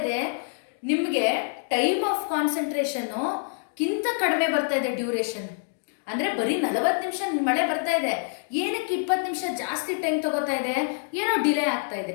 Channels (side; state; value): right; silent; digital silence